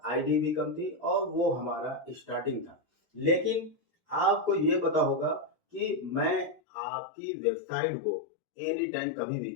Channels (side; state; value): right; drops out; at 6.6 s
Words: आईडी भी कम थी और वो हमारा स्टार्टिंग था। लेकिन आपको ये पता होगा कि मैं आपकी वेबसाइट को एनी टाइम कभी भी